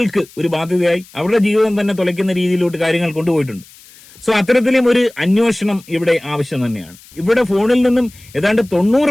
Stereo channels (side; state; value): left; noise; hiss, 24 dB below the sound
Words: ഒരു ബാധ്യതയായി അവരുടെ ജീവിതം തന്നെ തുലയ്ക്കുന്ന രീതിയിലോട്ട് കാര്യങ്ങൾ കൊണ്ടുപോയിട്ടുണ്ട്. സോ അത്തരത്തിലും ഒരു അന്വേഷണം ഇവിടെ ആവശ്യം തന്നെയാണ്. ഇവിടെ ഫോണിൽ നിന്നും ഏതാണ്ട്